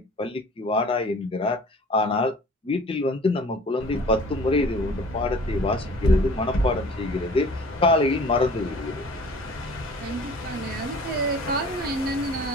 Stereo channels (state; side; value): normal; both; correlation 0.47